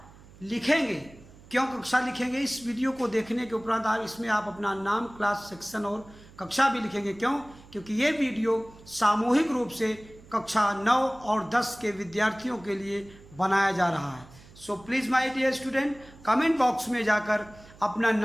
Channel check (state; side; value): noise; right; hum, 22 dB below the sound